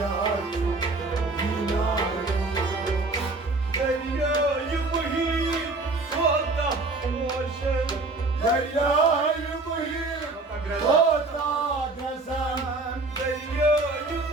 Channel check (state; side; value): quieter; left; 3.3 dB